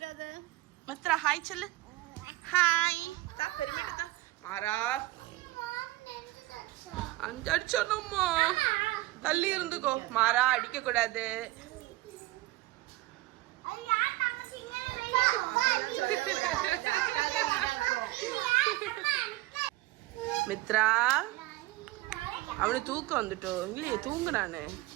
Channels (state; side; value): quieter; left; 18.8 dB